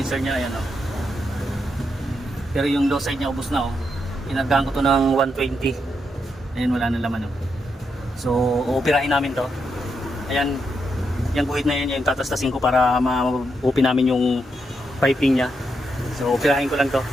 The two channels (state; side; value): normal; both; correlation 0.82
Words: niya, ayan oh. Pero yung low side niya ubos na oh. Inagahan ko to ng 120. Ayan, wala na laman oh. So, uupirahin namin to. Ayan, yung guhit na yan, yung tatastasin ko para ma-open namin yung piping niya. So, upirahin ko lang to.